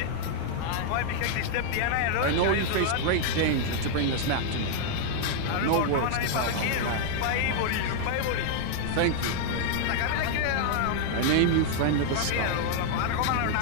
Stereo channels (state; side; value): different; both; correlation 0.00